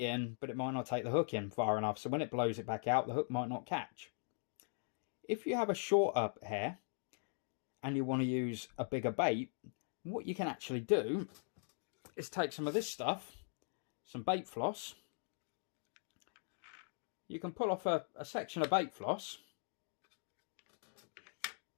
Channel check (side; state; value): right; silent; digital silence